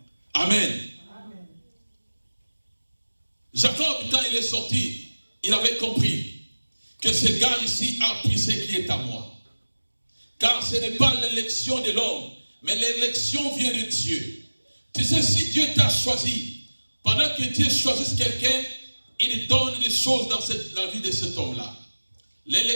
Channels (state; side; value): inverted; both; correlation -1.00